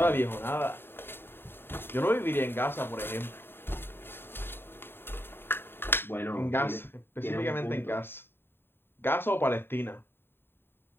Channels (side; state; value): right; late; 0.11 ms